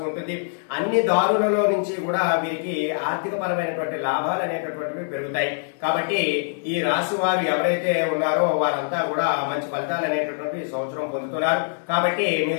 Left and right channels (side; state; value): right; silent; digital silence